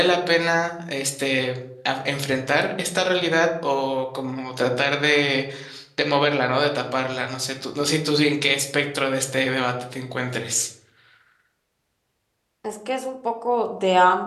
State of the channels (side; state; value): both; identical; correlation 1.00